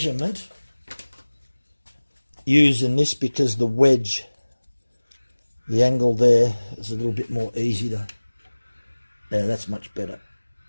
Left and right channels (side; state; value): both; inverted; correlation -1.00